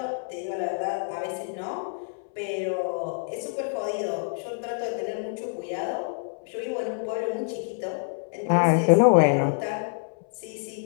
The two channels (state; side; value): silent; right; 60 dB below the other